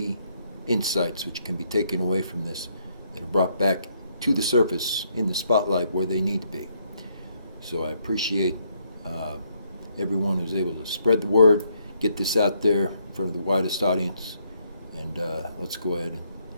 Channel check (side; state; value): both; inverted; correlation -0.73